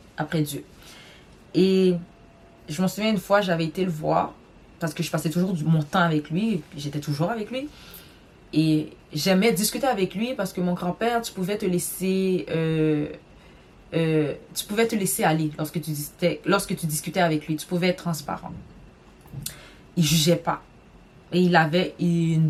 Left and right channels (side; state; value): both; identical; correlation 1.00